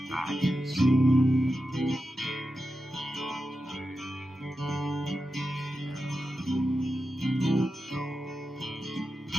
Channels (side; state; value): both; normal; correlation 0.90